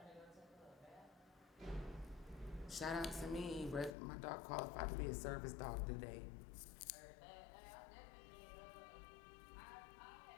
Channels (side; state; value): right; drops out; at 4.0 s